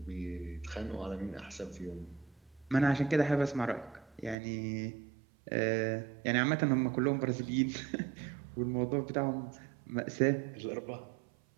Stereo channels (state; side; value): drops out; left; at 4.4 s